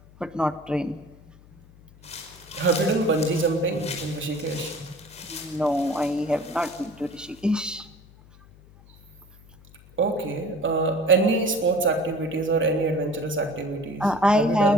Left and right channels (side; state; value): left; noise; hum, 24 dB below the sound